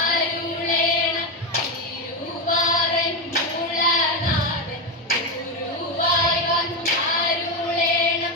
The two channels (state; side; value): normal; both; correlation 0.11